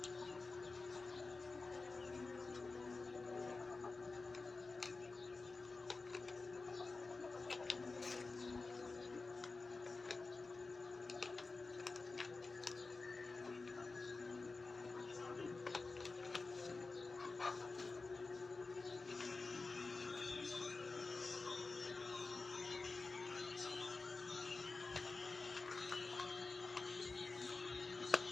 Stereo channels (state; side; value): quieter; right; 3.8 dB